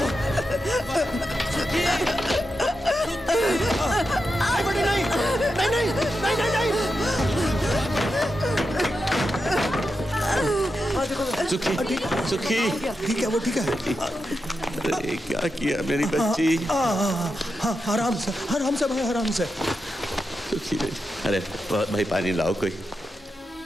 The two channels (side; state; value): both; normal; correlation 0.88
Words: सुखी, बेटी नहीं, सुखी, सुखी, ठीक है, वो ठीक है। अरे क्या किया मेरी बच्ची? आराम से भाई, आराम से। सुखी बेटी, अरे भाई पानी लाओ कोई।